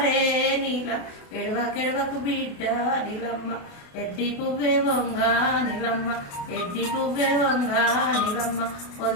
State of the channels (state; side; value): late; right; 28 ms